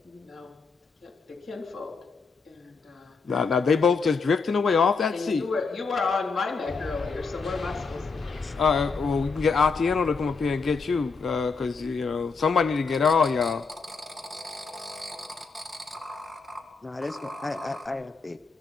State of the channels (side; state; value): right; quieter; 4.7 dB